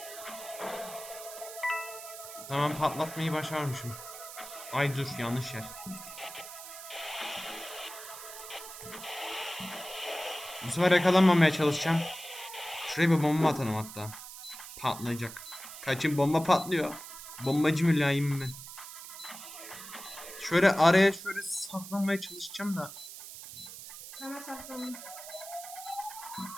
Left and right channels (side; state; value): right; noise; hiss, 12 dB below the sound